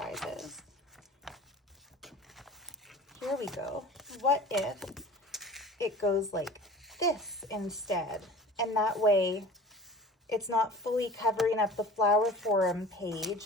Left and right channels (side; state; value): both; normal; correlation 0.41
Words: Here we go. What if it goes like this instead? And that way it's not fully covering up the flower forum